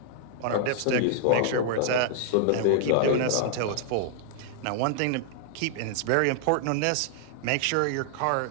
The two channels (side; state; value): both; different; correlation -0.01